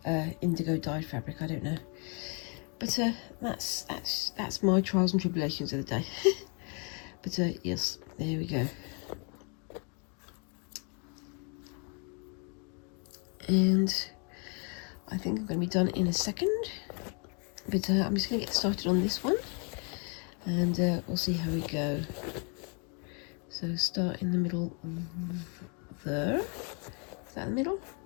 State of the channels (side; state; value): right; quieter; 36.6 dB